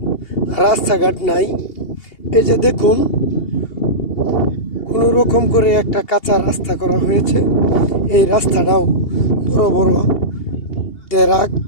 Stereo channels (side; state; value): right; late; 2.8 ms